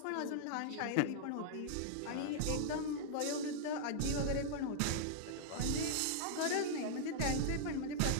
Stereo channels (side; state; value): both; different; correlation -0.01